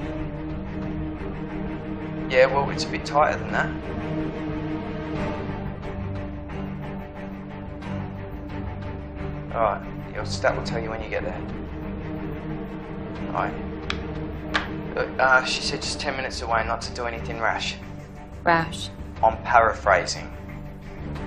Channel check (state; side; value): identical; both; correlation 1.00